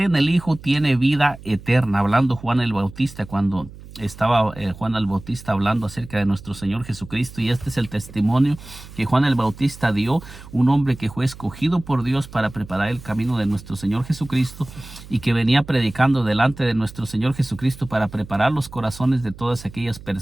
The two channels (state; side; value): noise; right; hum, 17 dB below the sound